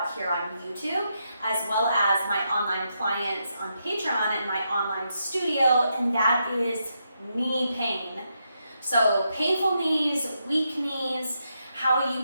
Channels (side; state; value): both; inverted; correlation -0.82